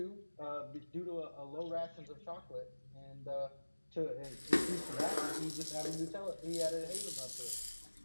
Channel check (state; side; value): inverted; both; correlation -1.00